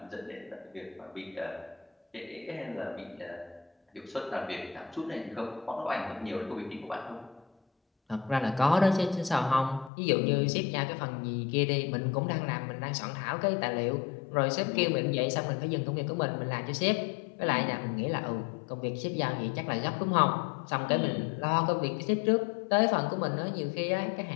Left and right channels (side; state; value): right; drops out; at 9.9 s